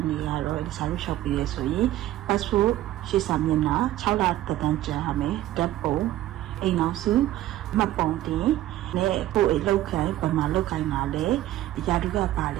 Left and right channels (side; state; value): left; quieter; 14.3 dB